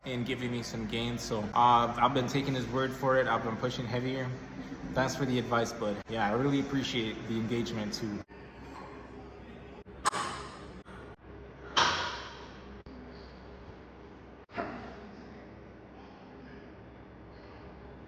in giving me some gains. So I've been taking his word for it. I've been pushing heavier. Thanks for the advice, bud. Yeah, I really appreciate the engagement too.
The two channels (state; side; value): identical; both; correlation 1.00